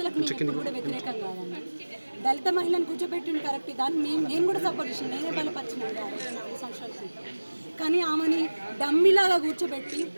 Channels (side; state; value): both; inverted; correlation -1.00